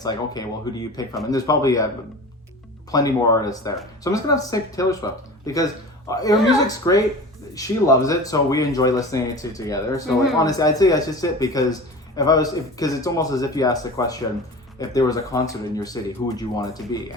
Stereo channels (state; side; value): normal; both; correlation 0.36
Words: like, okay, well, who do you pick from? And there's probably plenty more artists there. So I'm just gonna have to say Taylor Swift because her music's great. She loves it, so we enjoy listening to it together. So like, honestly, I'd say that's just it, because because it's almost as if you asked the question, if there was a concert in your city, who would you want it to be?